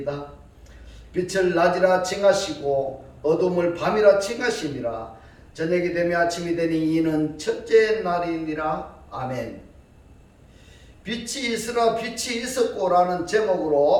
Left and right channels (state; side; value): identical; both; correlation 1.00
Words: 빛을 낮이라 칭하시고 어둠을 밤이라 칭하시니라. 저녁이 되며 아침이 되니 이는 첫째 날이니라. 아멘. 빛이 있으라 빛이 있었고라는